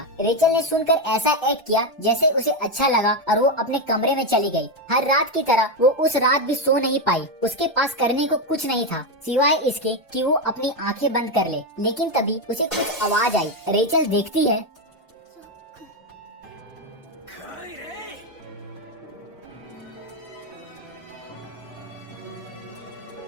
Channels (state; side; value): normal; both; correlation 0.08